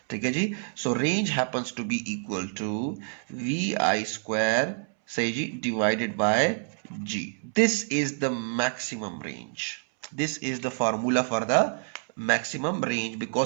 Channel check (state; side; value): silent; left; 60 dB below the other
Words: ठीक है जी, so range happens to be equal to vi square सही जी divided by g. This is the maximum range. This is the formula for the maximum range,